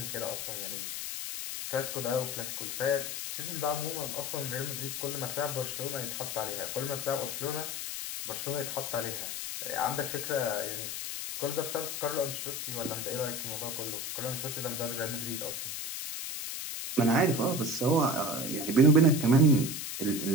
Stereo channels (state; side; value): noise; left; hiss, 4 dB below the sound